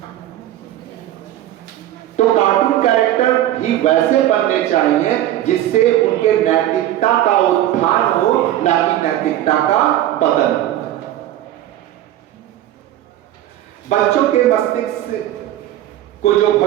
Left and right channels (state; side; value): quieter; left; 13.1 dB